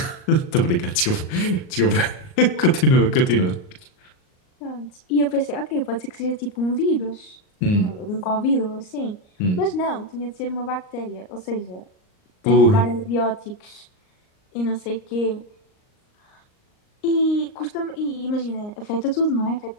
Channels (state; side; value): late; right; 38 ms